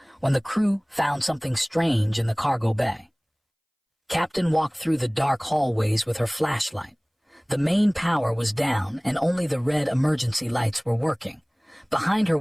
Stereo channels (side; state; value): both; identical; correlation 1.00